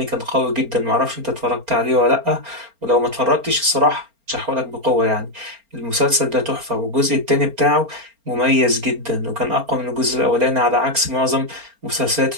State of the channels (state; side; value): late; left; 4.4 ms